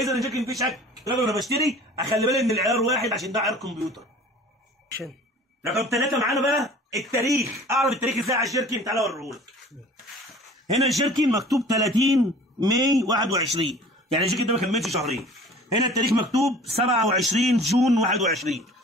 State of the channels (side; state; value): both; normal; correlation 0.46